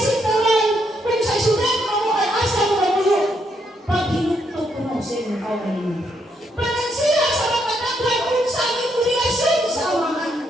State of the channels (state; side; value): normal; both; correlation 0.76